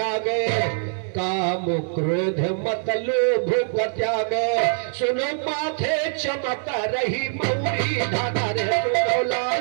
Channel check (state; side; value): silent; left; 63 dB below the other